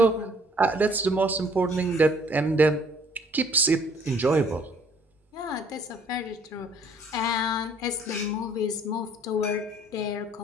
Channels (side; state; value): both; normal; correlation 0.59